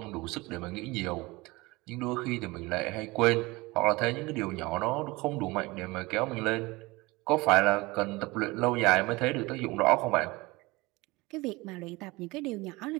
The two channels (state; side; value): quieter; left; 22.5 dB